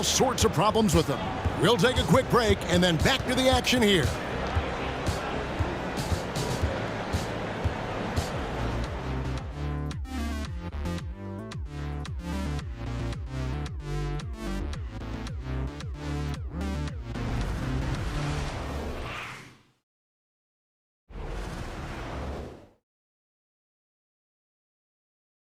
sorts of problems with him. We'll take a quick break and then back to the action here.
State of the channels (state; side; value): identical; both; correlation 1.00